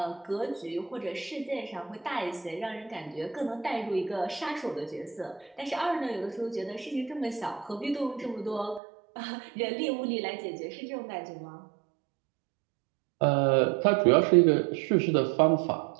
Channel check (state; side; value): drops out; left; at 8.8 s